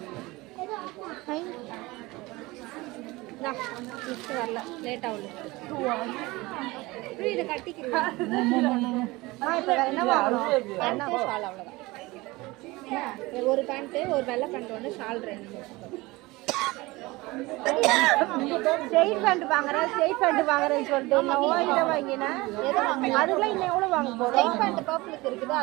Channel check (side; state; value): left; quieter; 21.6 dB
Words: வரல, late ஆகல. இதை கட்டிக்கிறேன். என்ன வாங்கணும்? என்ன ஷால்? அவ்வளோதான். ஒரு பேண்ட்டு, ஒரு வெள்ளை பேண்ட் ஒன்று, ஷால் 2. ஸ்ட்ரெயிட் பேண்ட் வாங்குறேன், ஸ்ட்ரெயிட் பேண்ட் வாங்குறேன்னு சொல்லிட்டு நான் இதை வாங்கினேன். எதை வாங்கினேன்? அதுக்குலாம் இன்னும் எவ்வளோ வாங்க போகிறோம்? ஸ்ட்ரெயிட் பேண்ட் பர்பிளுக்கு இருக்குது,